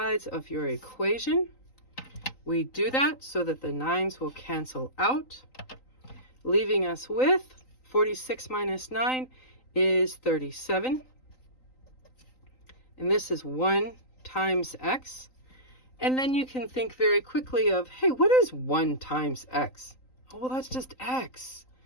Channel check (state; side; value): late; right; 3.9 ms